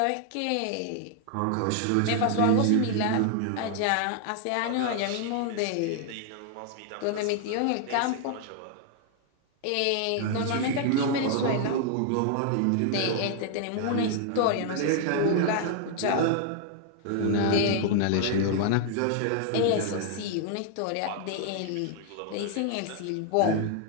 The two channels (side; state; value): both; different; correlation 0.00